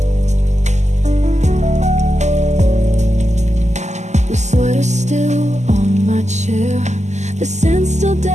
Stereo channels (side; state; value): left; late; 0.33 ms